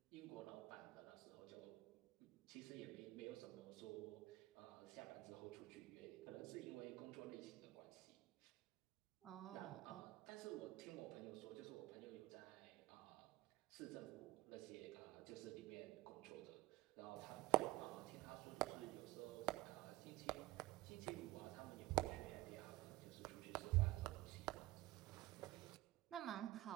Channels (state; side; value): quieter; left; 18.1 dB